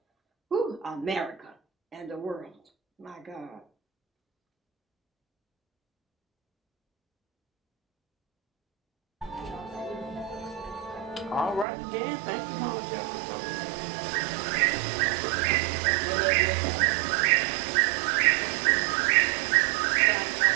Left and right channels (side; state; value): left; drops out; at 11.7 s